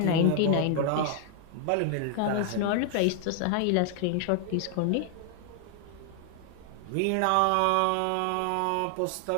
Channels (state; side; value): different; both; correlation 0.00